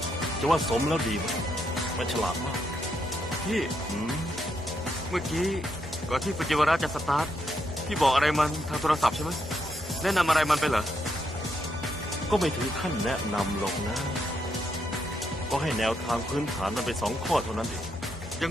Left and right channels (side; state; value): both; normal; correlation 0.79